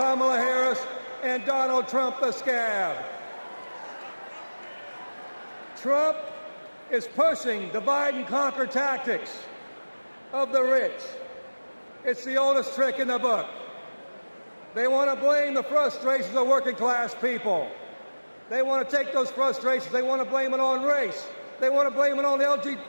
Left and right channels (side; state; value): both; inverted; correlation -1.00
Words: Harris and Donald Trump the scab. Trump is pushing divide and conquer tactics of the rich. It's the oldest trick in the book. They want to blame the frustrations of working class people. They want to take those frustrations, they want to blame it on race. They want to blame it on